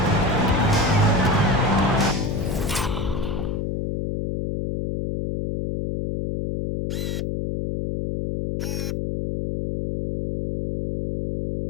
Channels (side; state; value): left; noise; hum, 2 dB below the sound